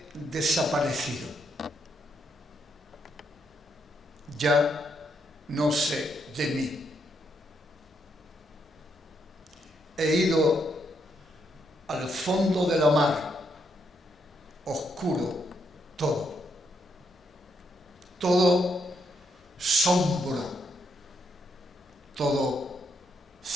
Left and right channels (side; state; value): both; normal; correlation 0.77